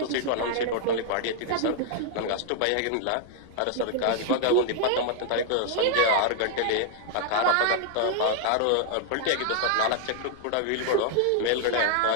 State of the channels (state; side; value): different; both; correlation -0.01